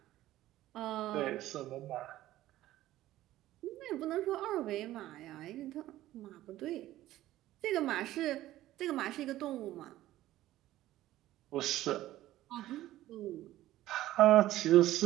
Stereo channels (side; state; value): left; quieter; 14.9 dB